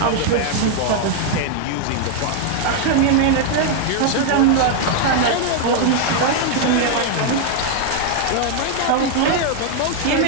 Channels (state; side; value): different; both; correlation 0.00